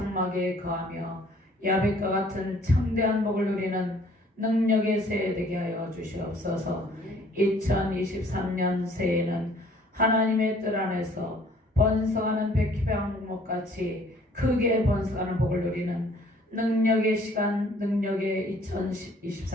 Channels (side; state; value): both; normal; correlation 0.57